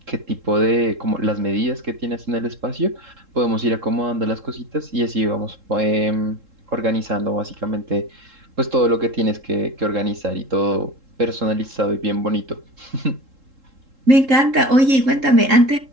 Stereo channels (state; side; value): late; left; 3.7 ms